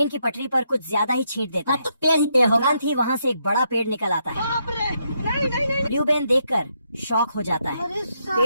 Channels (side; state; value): both; inverted; correlation -0.78